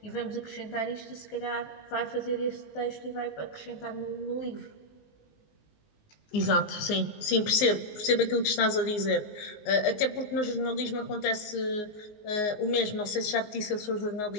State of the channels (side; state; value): right; late; 19 ms